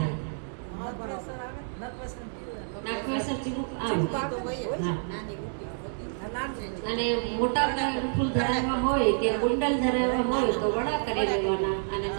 નાગવેસર ચીબુક આવે. હા. અને મોટા ફૂલ ધરાવવા હોય કે કુંડલ ધરાવવા હોય તો વડા કરી લેવાના અને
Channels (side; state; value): left; silent; digital silence